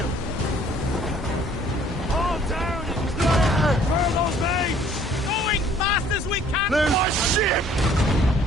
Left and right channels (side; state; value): both; normal; correlation 0.57